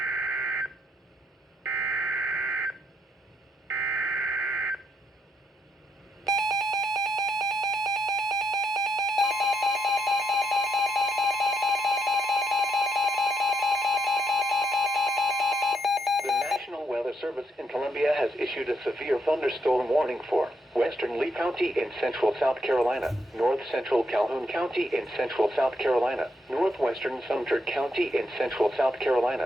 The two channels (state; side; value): normal; both; correlation 0.77